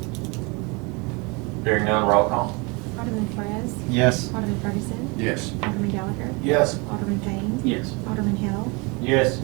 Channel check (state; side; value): quieter; left; 28.7 dB